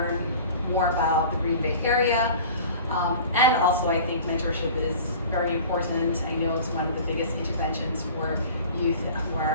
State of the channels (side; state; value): both; inverted; correlation -0.42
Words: more about the Green Bay area. And also I think mentorship is very important. I know it's one of the biggest interventions for youth who